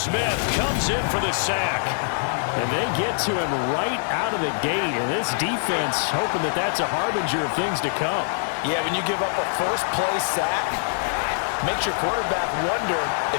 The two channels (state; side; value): silent; right; 63 dB below the other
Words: comes in for the sack. And they get to him right out of the gate. And this defense hoping that that's a harbinger of things to come. Yeah, when you give up a first-play sack, makes your quarterback wonder